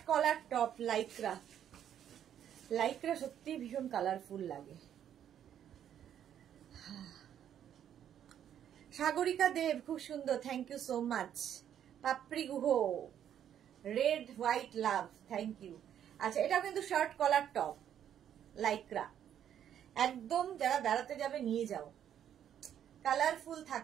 collar top Lycra. Lycra সত্যি ভীষণ কালারফুল লাগে। সাগরিকা দেব খুব সুন্দর, thank you so much. Papri Guha, red white love, thank you. আচ্ছা এটাও কিন্তু শার্ট কলার টপ লাইক্রা, একদম যারা বেড়াতে যাবে নিয়ে যাও, কালারফুল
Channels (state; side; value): quieter; left; 9.8 dB